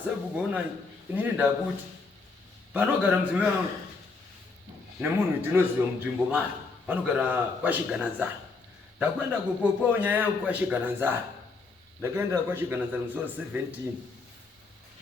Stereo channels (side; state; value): right; quieter; 4.1 dB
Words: sabhuku onai inini ndakuti panogara mudzimai wangu nemunhu ndinoziva munzvimbo mari vanogara kwaShigananzara. Ndakwenda kupopawo nyaya yangu kwaShigananzara. Ndakaenda kwaShigananzara musi wa 17